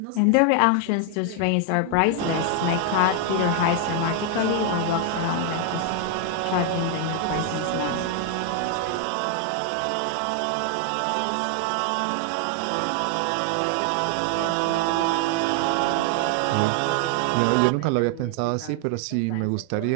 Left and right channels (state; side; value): different; both; correlation 0.00